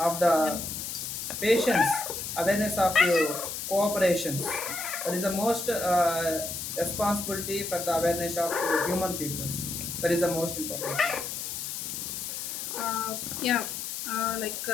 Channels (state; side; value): noise; left; hiss, 5 dB below the sound